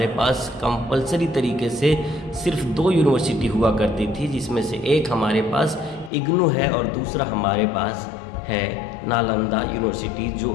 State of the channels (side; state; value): right; drops out; at 6.1 s